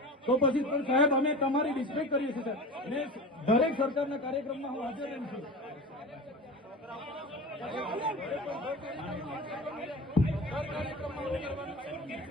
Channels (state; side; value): normal; both; correlation 0.32